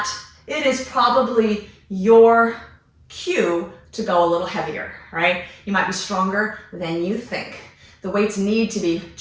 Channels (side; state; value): both; identical; correlation 1.00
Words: it is probably your cue to go a little heavier, right? You might be stronger than you think. The weights need to be